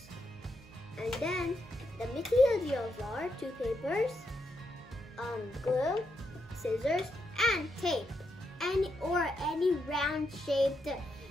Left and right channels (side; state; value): both; normal; correlation 0.82